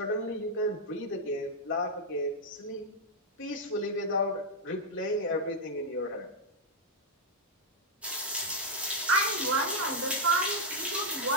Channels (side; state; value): both; normal; correlation -0.02